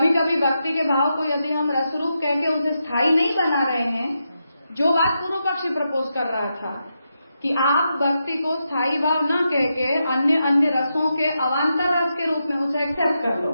कभी भक्ति के भाव को यदि हम रसरूप कह के उसे स्थायी नहीं बना रहे हैं, जो बात पूर्व पक्षी प्रपोज कर रहा था कि आप भक्ति को स्थायी भाव न कह के अन्य अन्य रसों के अवान्तर रस के रूप में उसे एक्सेप्ट कर लो,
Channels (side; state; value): both; inverted; correlation -0.85